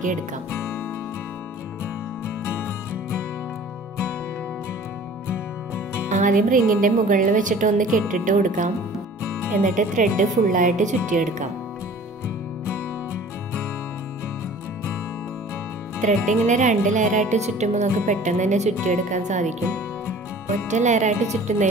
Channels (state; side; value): normal; both; correlation 0.47